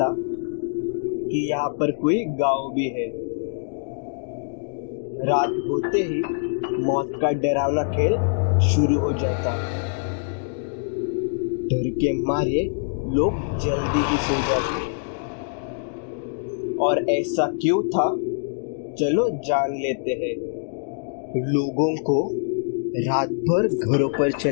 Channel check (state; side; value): silent; right; digital silence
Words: कि यहाँ पर कोई गांव भी है। रात होते ही मौत का डरावना खेल शुरू हो जाता। डर के मारे लोग जल्दी ही सो जाते। और ऐसा क्यों था, चलो जान लेते हैं। लोगों को रात भर घरों पर